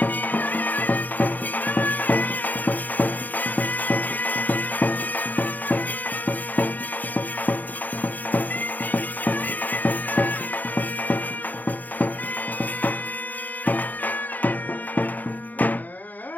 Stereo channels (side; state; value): right; late; 0.083 ms